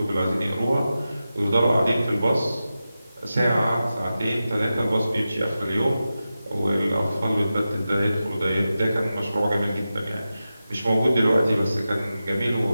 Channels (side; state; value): both; inverted; correlation -0.93